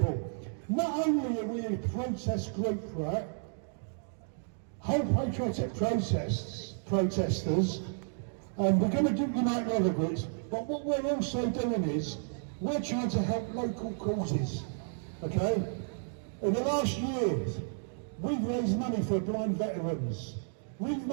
not only are we a protest group, right? Whole patriotic protesters, and we're going to unite other groups, but what we're also doing is, we're trying to help local causes, okay? In the last years, we've raised money for blind veterans. We've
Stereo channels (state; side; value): silent; left; digital silence